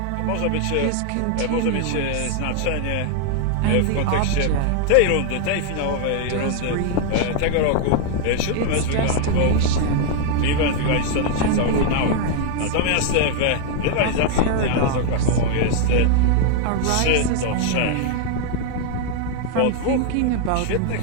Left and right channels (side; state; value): both; different; correlation 0.00